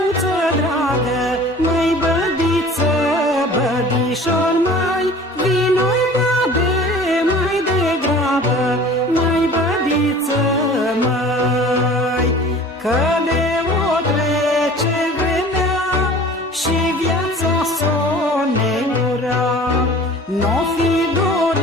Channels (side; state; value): both; normal; correlation 0.44